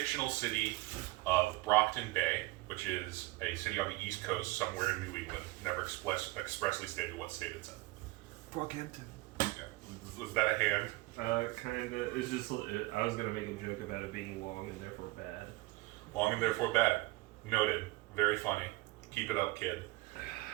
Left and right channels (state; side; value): quieter; left; 20.7 dB